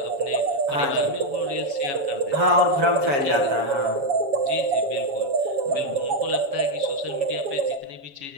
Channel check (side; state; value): left; late; 7.2 ms